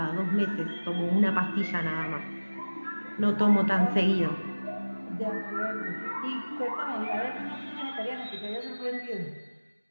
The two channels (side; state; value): both; inverted; correlation -1.00